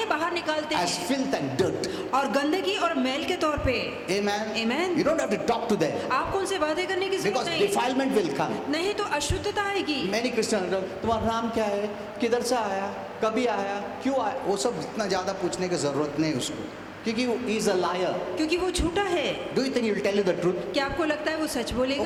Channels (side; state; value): both; identical; correlation 1.00